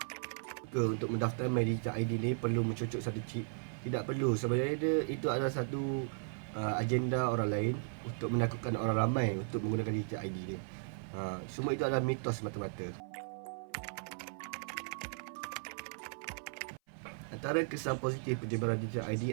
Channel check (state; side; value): silent; left; 54 dB below the other